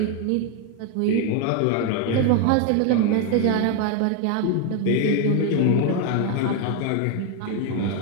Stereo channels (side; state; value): both; different; correlation 0.01